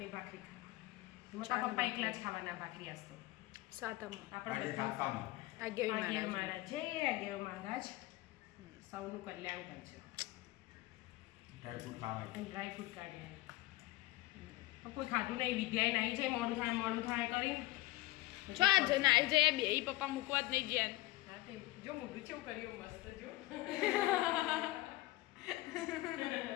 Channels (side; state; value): right; quieter; 18.6 dB